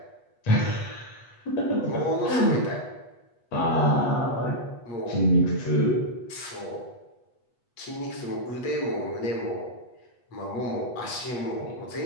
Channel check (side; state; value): right; late; 8.2 ms